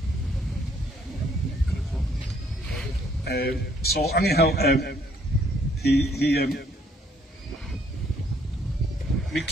So anyhow, Mick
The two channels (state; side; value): normal; both; correlation 0.65